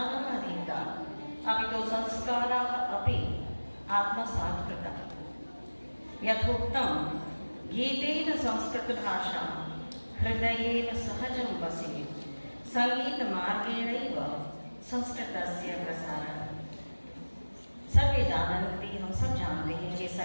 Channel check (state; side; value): inverted; both; correlation -1.00